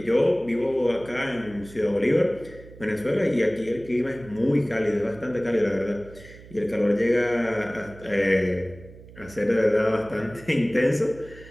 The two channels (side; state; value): right; noise; hum, 19 dB below the sound